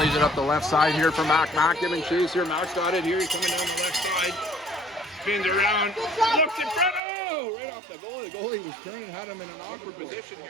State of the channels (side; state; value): left; drops out; at 7.0 s